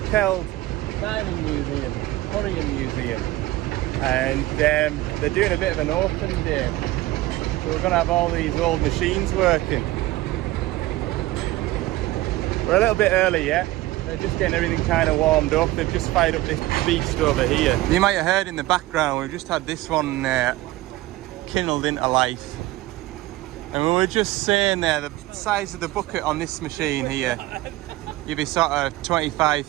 Mining Museum, Quarry Museum, and they're doing a bit of an open day. So we're going to have all these old machines working. We're a little bit early yet. They're just getting everything kind of warmed up. They've just fired up this beast over here. You might have heard in the background, we've just had this one kindled into life. And we were just saying there, the size of the bucket on this machine here, you'd be sort of 25,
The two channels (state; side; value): quieter; left; 17.7 dB